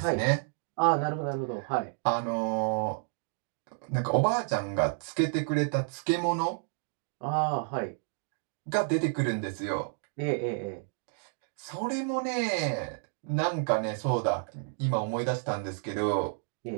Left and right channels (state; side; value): silent; left; 57 dB below the other